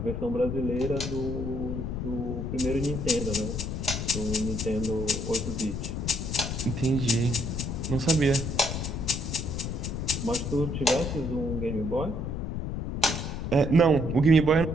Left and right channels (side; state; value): left; noise; rumble, 4 dB below the sound